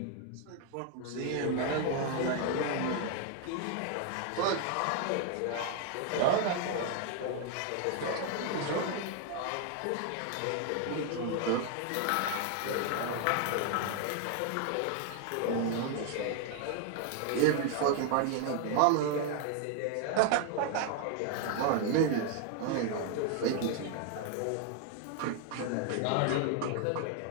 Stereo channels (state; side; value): different; both; correlation 0.00